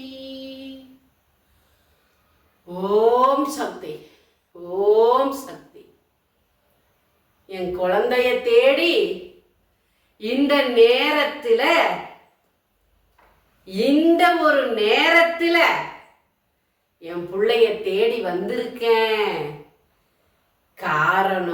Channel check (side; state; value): both; identical; correlation 1.00